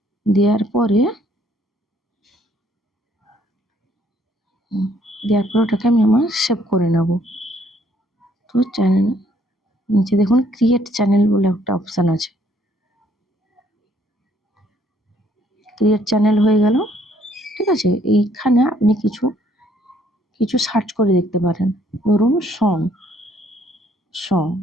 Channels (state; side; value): normal; both; correlation 0.65